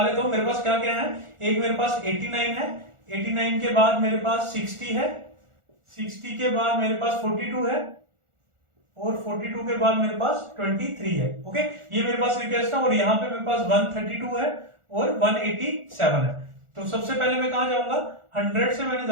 लेता हूं। मेरे पास क्या क्या है, एक मेरे पास 89 है, 89 के बाद मेरे पास 60 है, 60 के बाद मेरे पास 42 है और 42 के बाद मेरे पास 23 है। ओके, ये मेरे पास रिक्वेस्ट है और यहाँ पे मेरे पास 132 है और 187 है। तो सबसे पहले मैं कहां जाऊंगा, 100 से मैंने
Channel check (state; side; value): late; left; 1.4 ms